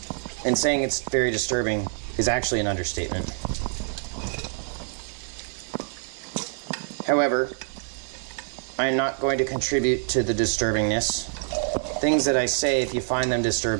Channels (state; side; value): silent; left; 61 dB below the other